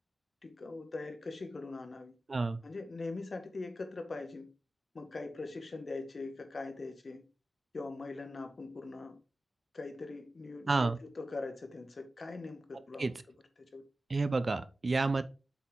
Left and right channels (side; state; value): both; normal; correlation 0.94